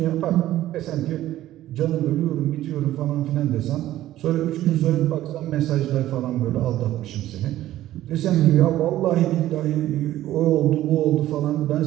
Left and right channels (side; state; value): left; quieter; 14.0 dB